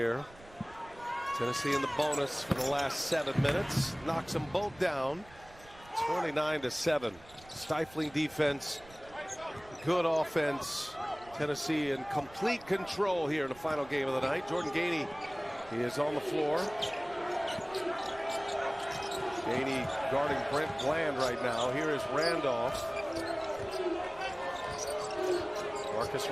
Tennessee in the bonus for the last 7 minutes. Knocks them both down. 29-7. Stifling defense. Good offense. Tennessee in complete control here in the final game of the night. Jordan Gainey, he is on the floor. Gainey guarding Brent Bland right now. Here is Randolph. Marcus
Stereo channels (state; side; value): noise; right; rumble, 22 dB below the sound